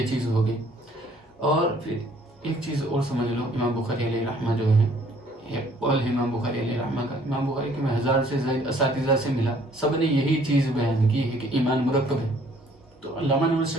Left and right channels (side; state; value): both; normal; correlation 0.60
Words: چیز ہو گئی۔ اور پھر ایک چیز اور سمجھ لو، امام بخاری علیہ رحمہ جو ہے، یہ قول ہے امام بخاری علیہ رحمہ کا، امام بخاری کے میں 1000 سے زائد اساتذہ سے ملا، سب نے یہی چیز بیان کی ہے کہ ایمان مرکب ہے۔ تو علامہ نور